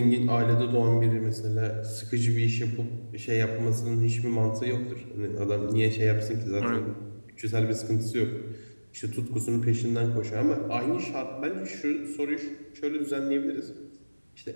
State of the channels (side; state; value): both; inverted; correlation -1.00